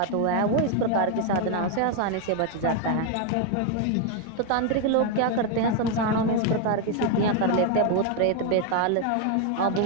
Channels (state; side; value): different; both; correlation 0.01